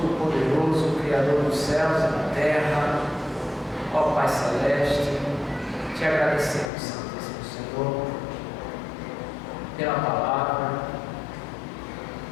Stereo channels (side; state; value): right; drops out; at 6.7 s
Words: Criador dos céus e da terra, ó Pai Celeste, te agradecemos, Santíssimo Senhor, pela palavra,